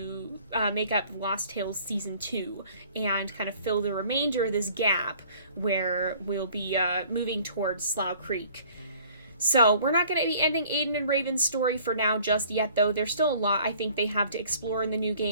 make up Lost Tales Season 2 and kind of fill the remainder of this gap where we'll be moving towards Slough Creek. So we're not going to be ending Aden and Raven's story for now just yet, though. There's still a lot I think they have to explore in the new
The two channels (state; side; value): inverted; both; correlation -0.54